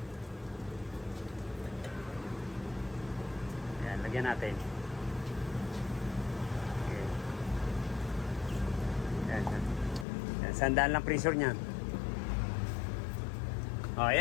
Yan, lagyan natin. Okay. Yan, yan. Yan, sandaan lang pressure niyan. Oh,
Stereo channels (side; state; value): right; drops out; at 10.1 s